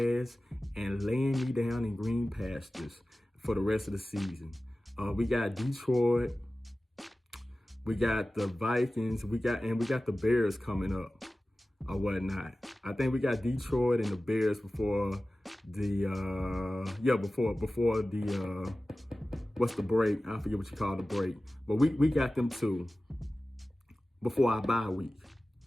and laying me down in green pastures for the rest of the season. We got Detroit, We got the Vikings. We got the Bears coming up or whatnot. I think we got Detroit and the Bears before the before the what's the break? I forget what you call the break. But we got them two before our bye week.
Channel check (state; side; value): normal; both; correlation 0.96